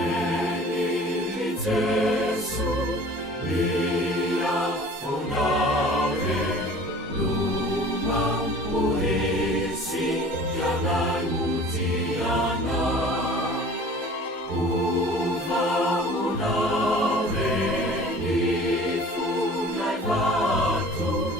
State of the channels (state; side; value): normal; both; correlation 0.45